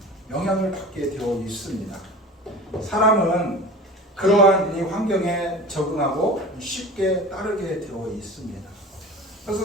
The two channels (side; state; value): both; normal; correlation 0.37